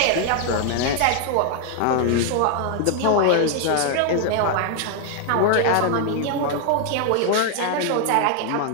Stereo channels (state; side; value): different; both; correlation 0.00